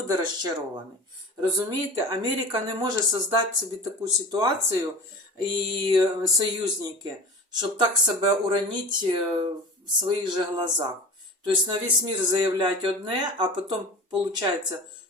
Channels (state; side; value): normal; both; correlation 0.35